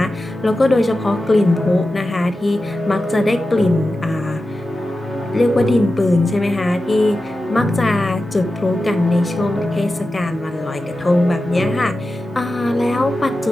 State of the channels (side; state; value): both; normal; correlation 0.93